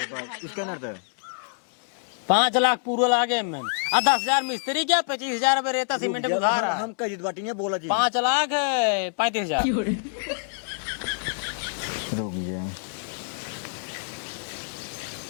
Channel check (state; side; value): silent; right; 61 dB below the other